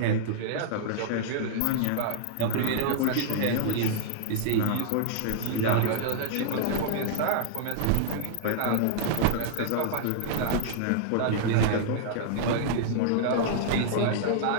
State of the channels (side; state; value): both; different; correlation -0.01